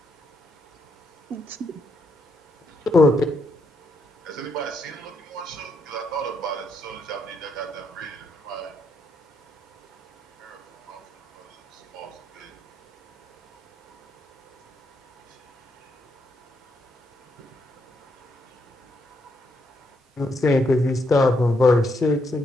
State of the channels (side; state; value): both; normal; correlation 0.77